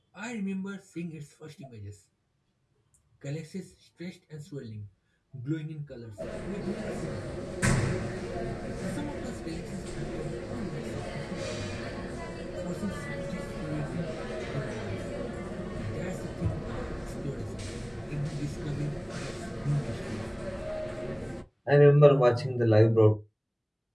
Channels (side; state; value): both; identical; correlation 1.00